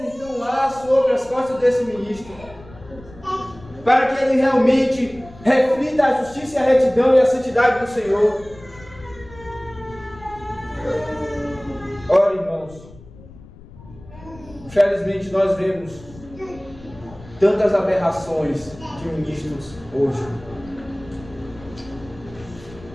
então há sobre as costas desse ministro, para que ele realmente reflita a justiça e a retidão e a santidade do Senhor. Ora, irmãos, infelizmente nós vemos tantas aberrações de ministros hoje,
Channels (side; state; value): left; noise; rumble, 20 dB below the sound